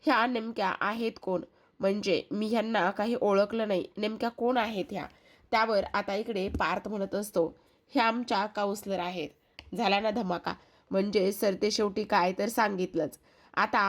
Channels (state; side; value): identical; both; correlation 1.00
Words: ह्या नेमक्या आहेत कोण. म्हणजे मी ह्यांना काही ओळखलं नाही, नेमक्या कोण आहेत ह्या. त्यावर आता इकडे पार्थ म्हणत असतो, ह्या आमच्या काउन्सलर आहेत. झाला ना धमाका. म्हणजे सरते शेवटी काय तर सांगितलंच.